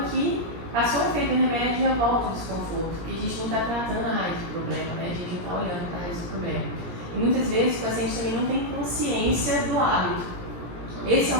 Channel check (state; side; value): late; left; 17 ms